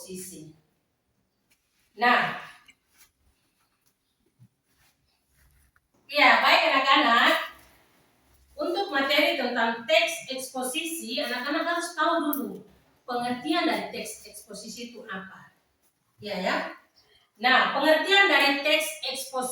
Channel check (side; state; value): both; identical; correlation 1.00